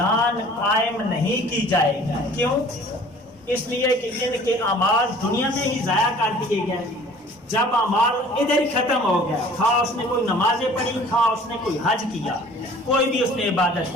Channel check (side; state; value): both; normal; correlation 0.50